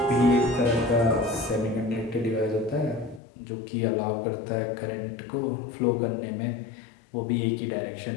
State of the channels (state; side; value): drops out; right; at 3.2 s